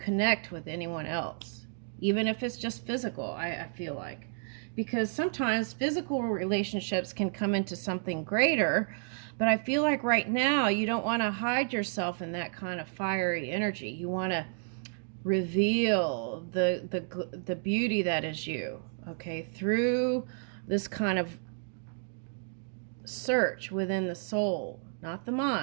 with anyone else, even if it's just physical. I feel like, because sometimes physical relationships can come into something greater, but I feel like right now you don't want to hide yourself in that kind of fiery energy. You want to reveal the beauty that is you, okay, through this kind of search within the soul, not the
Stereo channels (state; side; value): silent; left; digital silence